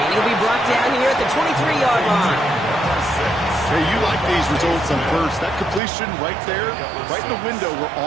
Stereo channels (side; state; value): left; drops out; at 5.8 s